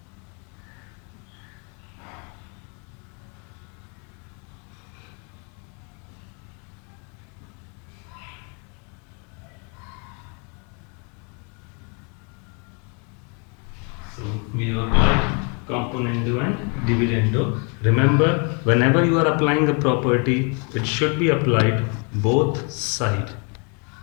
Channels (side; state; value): right; quieter; 35.9 dB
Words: so we have applied componendo and dividendo. Remember, whenever you are applying a property, it should be applied both sides.